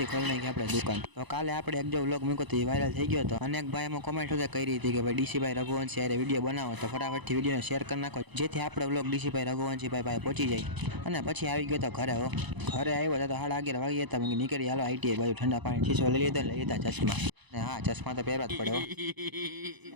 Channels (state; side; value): late; left; 1.0 ms